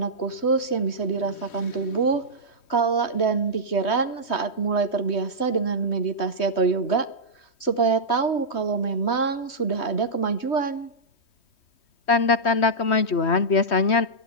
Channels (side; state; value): right; late; 3.2 ms